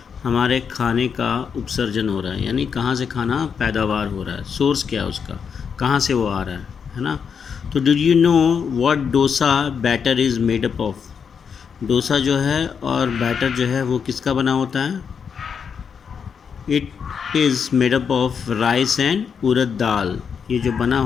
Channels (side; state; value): right; quieter; 6.7 dB